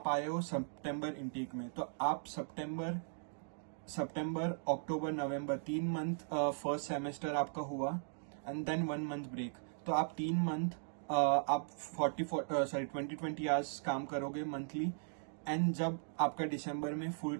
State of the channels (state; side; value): silent; left; digital silence